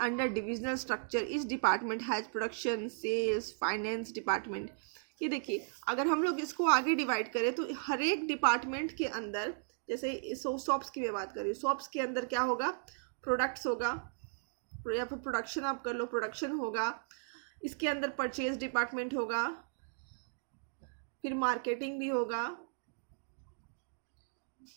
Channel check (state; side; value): silent; left; digital silence